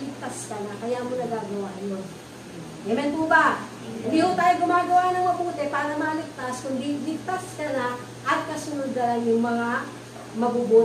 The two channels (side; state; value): both; identical; correlation 1.00